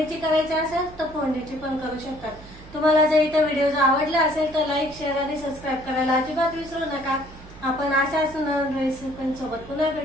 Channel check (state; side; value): noise; right; hum, 18 dB below the sound